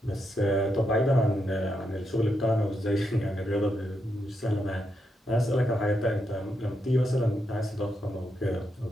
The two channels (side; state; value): both; normal; correlation 0.82